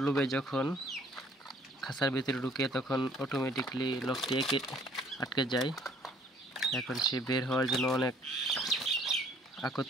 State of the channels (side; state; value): both; normal; correlation 0.58